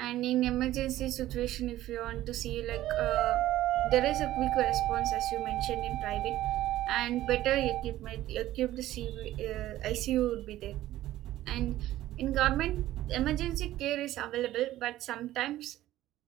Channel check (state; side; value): quieter; left; 14.6 dB